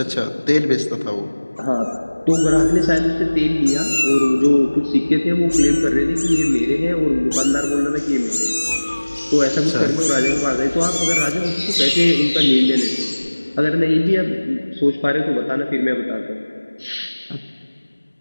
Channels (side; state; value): both; inverted; correlation -1.00